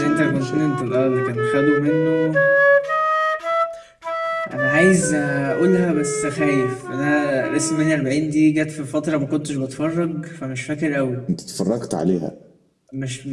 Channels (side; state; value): both; identical; correlation 1.00